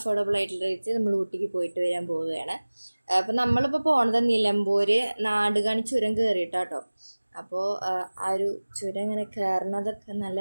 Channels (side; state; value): both; inverted; correlation -1.00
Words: ആയിട്ടുള്ള റേറ്റ് നമ്മൾ ഊട്ടിക്ക് പോയിട്ട് വരാൻ പോവുകയാണ്. അപ്പം നമ്മളിപ്പോൾ പോണത് നിലമ്പൂർ നാടുകാണി ചുരം കയറിയിട്ടാട്ടോ. അപ്പോൾ ആ ഒരു ചുരം ഇങ്ങനെ കയറുന്നതൊക്കെ നല്ല